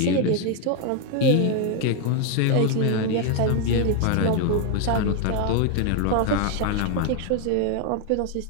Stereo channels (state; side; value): different; both; correlation 0.01